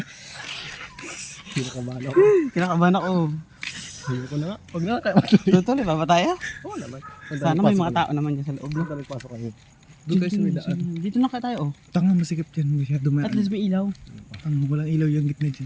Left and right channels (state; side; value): identical; both; correlation 1.00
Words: Kinakabahan ako. Hindi ko na nga. Huwag na kayo matuloy. Tutuloy ba ba tayo? Oo naman. Sana may mga tao naman dyan sa loob. No? Pasok kayo. Doon tayo sa may daan. Dito na kaya tayo oh. Tanga, masikip yan. Masyado At least may ilaw. Tanga, walang ilaw yung gitna dyan.